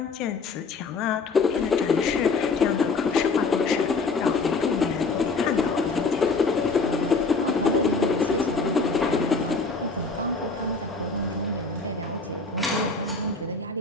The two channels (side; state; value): right; quieter; 4.2 dB